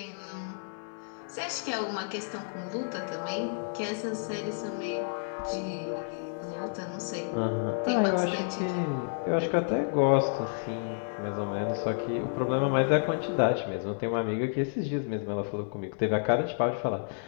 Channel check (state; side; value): silent; right; digital silence